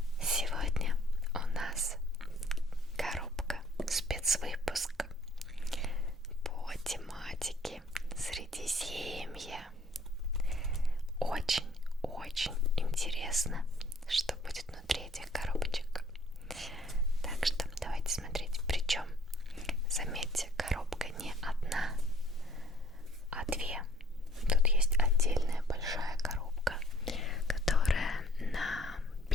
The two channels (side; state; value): both; normal; correlation 0.58